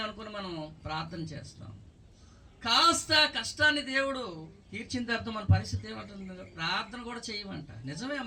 అనుకుని మనం ప్రార్థన చేస్తాం. కాస్త కష్టాన్ని దేవుడు తీర్చిన తర్వాత మన పరిస్థితి ఏమంటుంది, ప్రార్థన కూడా చేయమంట. నిజమే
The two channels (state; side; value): identical; both; correlation 1.00